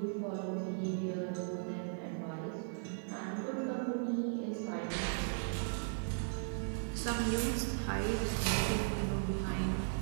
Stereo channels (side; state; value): left; silent; 53 dB below the other